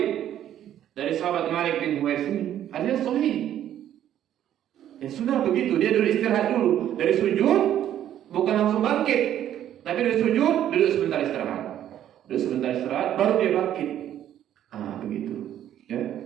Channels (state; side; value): quieter; left; 11.1 dB